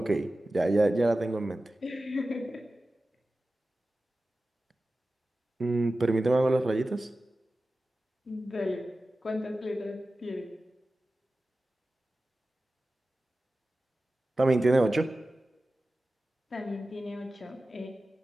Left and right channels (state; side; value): normal; both; correlation 0.95